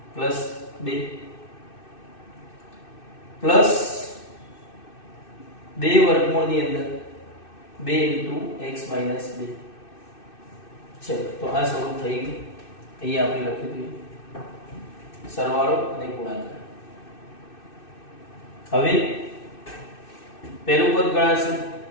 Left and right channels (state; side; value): late; right; 2.6 ms